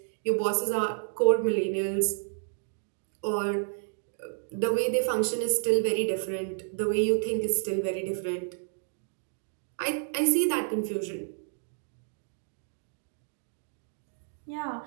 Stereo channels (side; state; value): left; silent; digital silence